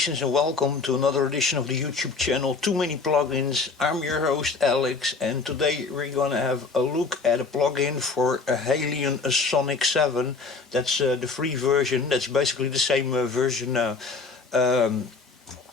and welcome to another edition of the YouTube channel Too Many Plugins. I'm your host Alex, and today we're gonna have a look at a plugin for a HALion Sonic 7. That's the free version. That's basically the same version,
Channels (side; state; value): right; quieter; 4.3 dB